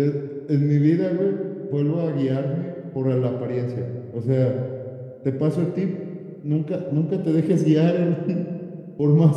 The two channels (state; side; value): identical; both; correlation 1.00